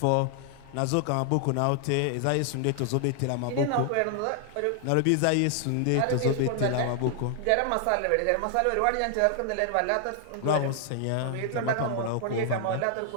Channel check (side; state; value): both; different; correlation 0.00